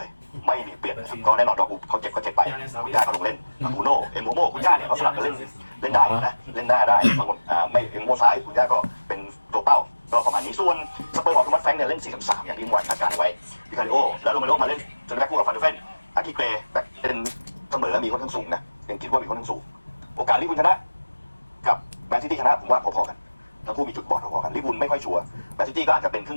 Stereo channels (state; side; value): inverted; both; correlation -1.00